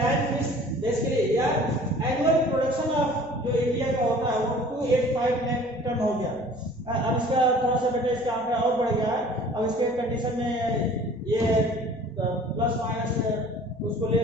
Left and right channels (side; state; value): right; noise; hum, 28 dB below the sound